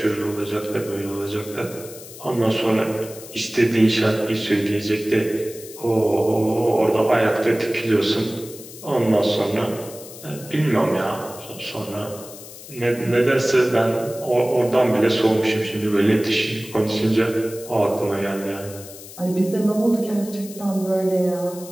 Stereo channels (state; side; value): noise; left; hiss, 16 dB below the sound